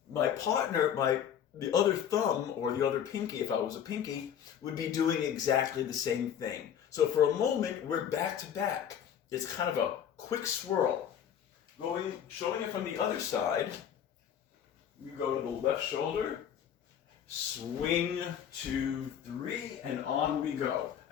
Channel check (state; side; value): quieter; right; 9.1 dB